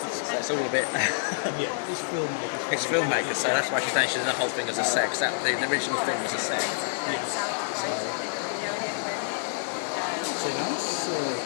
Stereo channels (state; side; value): silent; right; digital silence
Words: So it's all a bit. Yeah, it's filmmakers. It's filmmakers, so that's why she's saying she's the whole thing as a sex. The original film was a sex. Yes. So nice.